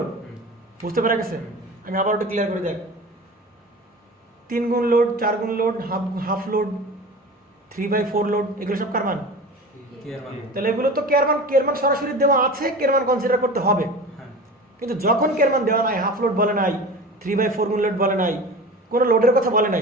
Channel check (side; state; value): both; normal; correlation 0.34